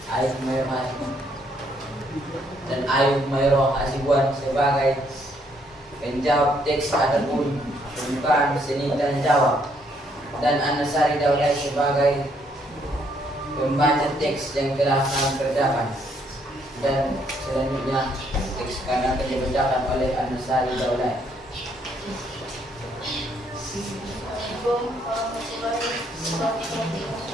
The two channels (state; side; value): normal; both; correlation 0.70